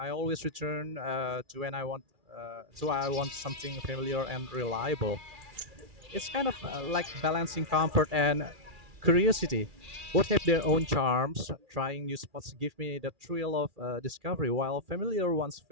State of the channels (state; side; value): late; left; 2.4 ms